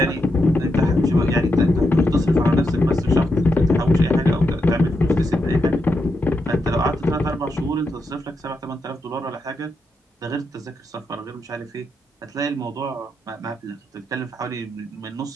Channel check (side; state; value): both; normal; correlation 0.84